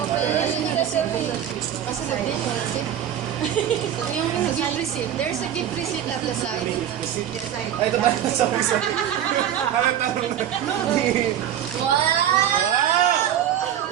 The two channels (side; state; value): left; quieter; 10.4 dB